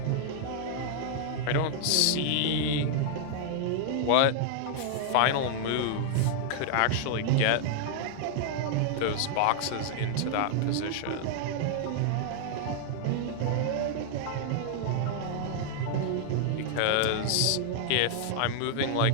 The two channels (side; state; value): both; different; correlation -0.01